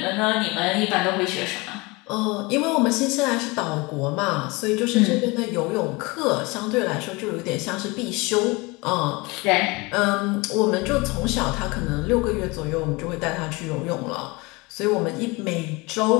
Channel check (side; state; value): right; quieter; 25.0 dB